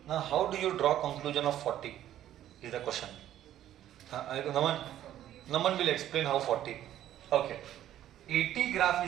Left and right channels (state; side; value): quieter; left; 12.0 dB